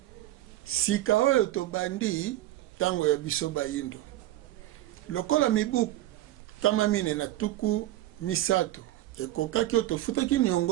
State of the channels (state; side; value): quieter; left; 15.1 dB